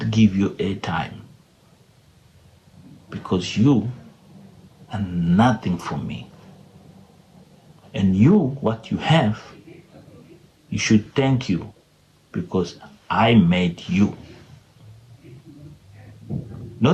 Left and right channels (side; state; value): both; identical; correlation 1.00